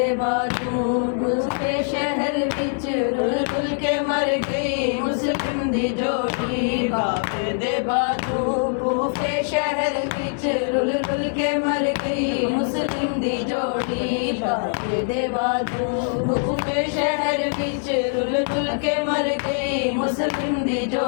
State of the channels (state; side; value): silent; right; 63 dB below the other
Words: बाजू कूफे शहर विच रुल रुल के मर गई मुस्लिम दी जोड़ी बाबे दे बाजू कूफे शहर विच रुल रुल के मर गई मुस्लिम दी जोड़ी बाबे दे बाजू कूफे शहर विच रुल रुल के मर गई मुस्लिम दी